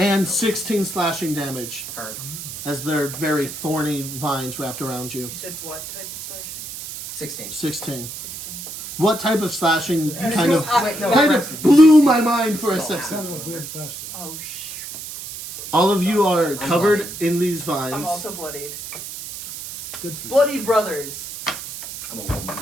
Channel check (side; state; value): right; noise; hiss, 10 dB below the sound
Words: 16 slashing damage. Hard. As their very thorny vines wrapped around you. You said what type of slashing? 16. 16. 16. What type of slashing kind of Wait, no, kind Braxton, of blew my mind for a So- That's second? kind of a weird question. Oh, All of you are covered bloodied. in these vines. I'm also bloodied. Good for you. Bloody brothers. I'm a woman.